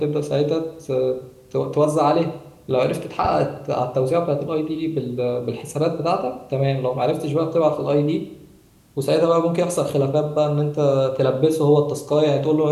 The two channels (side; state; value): both; identical; correlation 1.00